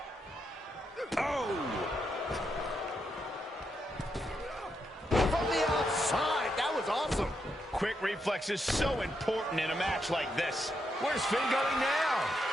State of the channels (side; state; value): both; normal; correlation 0.81